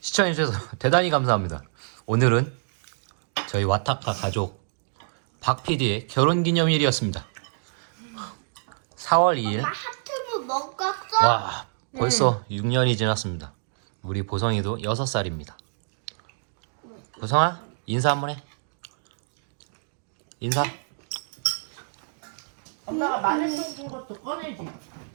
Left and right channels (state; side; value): silent; left; digital silence